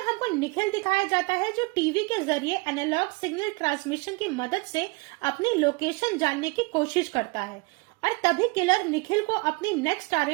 हमको निखिल दिखाया जाता है जो टीवी के जरिए एनालॉग सिग्नल ट्रांसमिशन की मदद से अपनी लोकेशन जानने की कोशिश करता है और तभी किलर निखिल को अपनी नेक्स्ट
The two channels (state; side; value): quieter; left; 27.0 dB